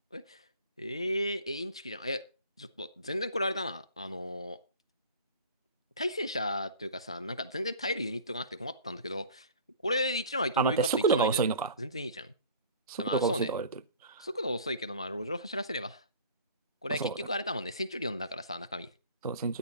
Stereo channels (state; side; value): inverted; both; correlation -0.42